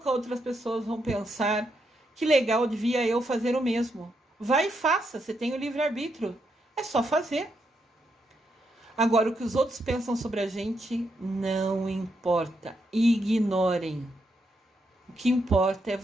outras pessoas vão pensar que legal, devia eu fazer o mesmo. Vai e faça, você tem o livre-arbítrio. É só fazer. Agora, o que os outros pensam sobre a gente não importa. Ignorem. O que importa é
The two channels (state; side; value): normal; both; correlation 0.80